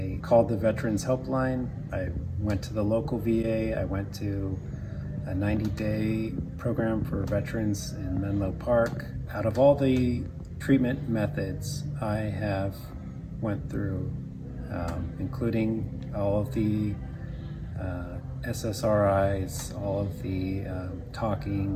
called the Veterans Helpline. I went to the local VA. I went to a 90-day program for veterans in Menlo Park. Out of all the treatment methods I have went through, including all of the SSRIs, all of the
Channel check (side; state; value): both; identical; correlation 1.00